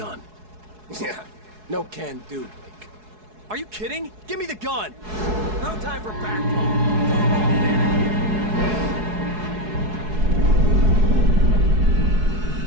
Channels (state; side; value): late; left; 4.7 ms